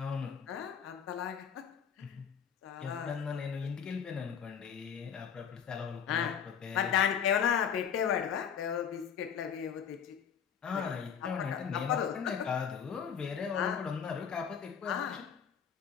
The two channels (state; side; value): quieter; right; 7.7 dB